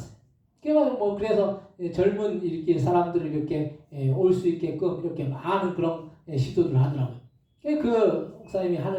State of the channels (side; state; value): both; identical; correlation 1.00